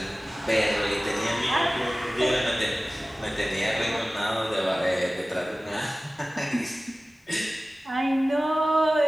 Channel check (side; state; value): both; normal; correlation 0.97